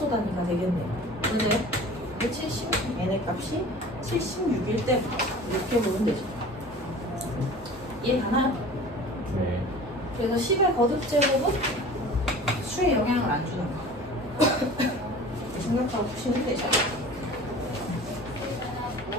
단위가 되겠네요. 맞아요? 70, n의 값이 76일 때부터 이렇게 보면 되죠. 이해가나요? 네. 그래서 10의 거듭제곱은 수에 영향을 안 주는 거. 생각하고 푸시면 되죠.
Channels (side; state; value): both; normal; correlation 0.41